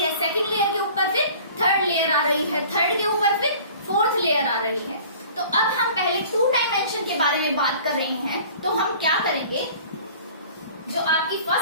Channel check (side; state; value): both; inverted; correlation -0.47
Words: सेकंड लेयर के ऊपर फिर थर्ड लेयर आ रही है, थर्ड के ऊपर फिर फोर्थ लेयर आ रही है। तो अब हम पहले 2 डायमेंशन के बारे में बात कर रहे हैं, तो हम क्या करेंगे, जो आपकी